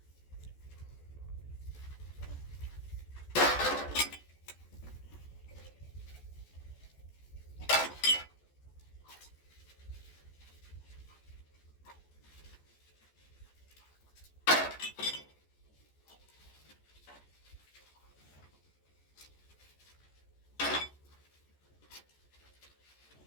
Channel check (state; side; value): late; right; 14 ms